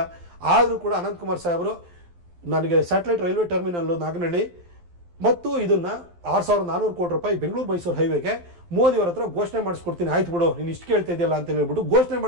ಆದರೂ ಕೂಡ ಅನಂತ್ ಕುಮಾರ್ ಸಾಹೇಬರು ನನಗೆ ಸ್ಯಾಟಲೈಟ್ ರೈಲ್ವೆ ಟರ್ಮಿನಲ್ ನಾಗನಹಳ್ಳಿ ಮತ್ತು ಇದನ್ನ 6,400 ಕೋಟಿ ರೂಪಾಯಿ ಬೆಂಗಳೂರು ಮೈಸೂರು ಹೈವೇಗೆ ಮೋದಿ ಅವರ ಹತ್ರ ಘೋಷಣೆ ಮಾಡಿಸ್ಕೊಡ್ತೀನಿ, ಆಯ್ತು ಬಿಡು ನೀನು ಇಷ್ಟು ಕೇಳ್ತಾ ಇದೆಯಲ್ಲ ಅಂತ ಹೇಳ್ಬಿಟ್ಟು ಘೋಷಣೆ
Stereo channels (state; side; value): late; left; 12 ms